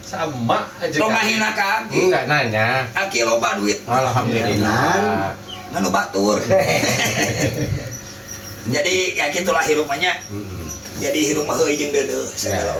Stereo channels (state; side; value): identical; both; correlation 1.00